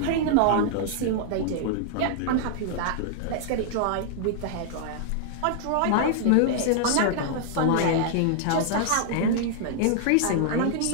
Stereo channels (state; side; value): different; both; correlation -0.01